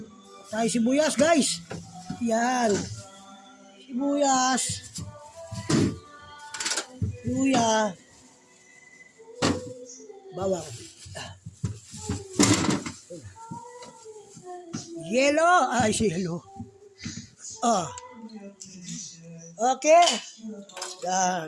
Tayo sibuyas, guys. Yan. Sibuyas. Luya. Bawang. Yellow. Ay, si yellow. Okay. Yan.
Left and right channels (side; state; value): both; identical; correlation 1.00